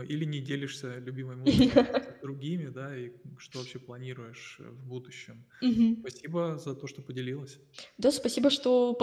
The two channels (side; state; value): both; identical; correlation 1.00